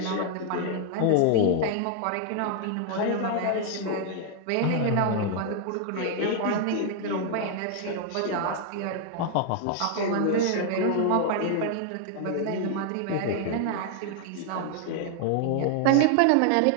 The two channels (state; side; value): different; both; correlation 0.00